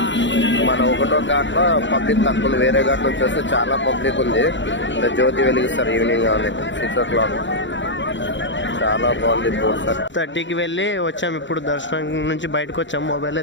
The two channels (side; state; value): right; late; 0.54 ms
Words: మన 1వ ఘాట్లో పబ్లిక్ తక్కువ ఉంది. వేరే ఘాట్ నుంచి వస్తే చాలా పబ్లిక్ ఉంది. జ్యోతి వెలిగిస్తారు ఈవినింగ్ కానీ 6 o'clock. చాలా బాగుంది. 4:30కి వెళ్ళి వచ్చాం. ఇప్పుడు దర్శనం నుంచి బయటకు వచ్చాం. మొబైల్